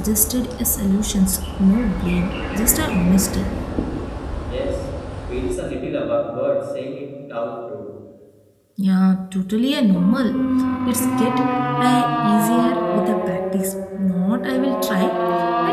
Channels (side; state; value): both; identical; correlation 1.00